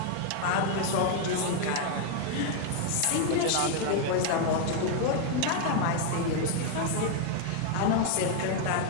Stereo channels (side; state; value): both; different; correlation 0.01